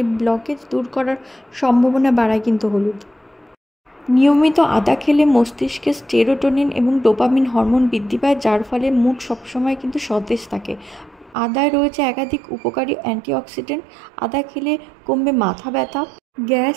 ব্লকেজ দূর করার সম্ভাবনা বাড়ায় কিন্তু হলুদ। নিয়মিত আদা খেলে মস্তিষ্কে সেরোটোনিন এবং ডোপামিন হরমোন বৃদ্ধি পায়, যার ফলে মুড সবসময় কিন্তু সতেজ থাকে। আদায় রয়েছে একাধিক উপকারী অ্যান্টিঅক্সিডেন্ট। আদা খেলে কমবে মাথা ব্যথা, গ্যাস,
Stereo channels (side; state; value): left; drops out; at 11.4 s